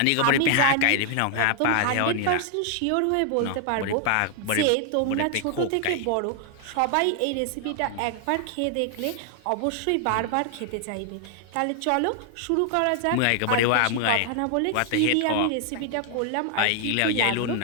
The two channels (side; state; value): both; different; correlation 0.00